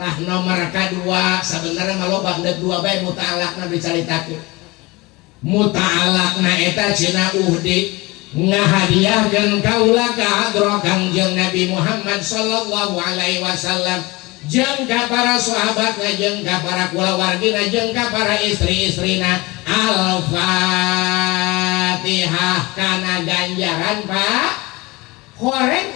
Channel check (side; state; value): right; quieter; 23.0 dB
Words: nomor kadua sebenarnya maloba deuk dua bae muta'alaqna dicaritakeun. Muta'alaqna eta cenah uhdi ngahadiahkeun kaula ka hadrat Kangjeng Nabi Muhammad sallallahu alaihi wasallam, jeung ka para sahabat, jeung ka para kulawargina, jeung ka para istri-istrina. Al-Fatihah kana ganjaran Pak.